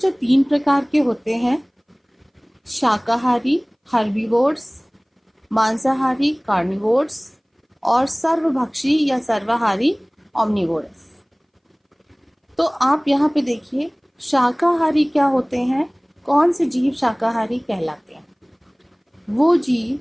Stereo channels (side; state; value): both; identical; correlation 1.00